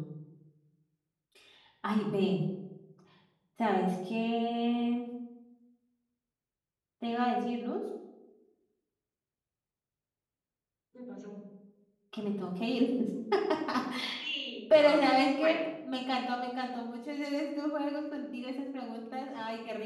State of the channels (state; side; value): identical; both; correlation 1.00